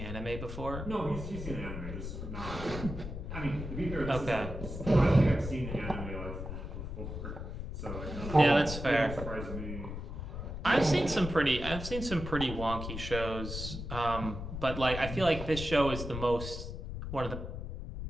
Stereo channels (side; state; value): left; noise; rumble, 7 dB below the sound